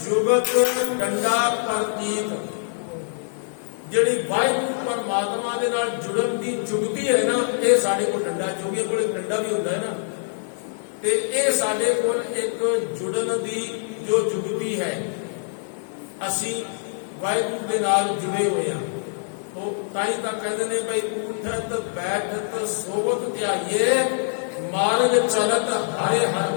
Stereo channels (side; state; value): right; silent; 63 dB below the other